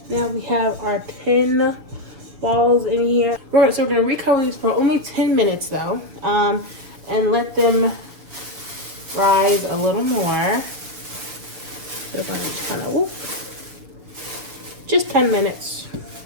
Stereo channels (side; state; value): left; late; 6.6 ms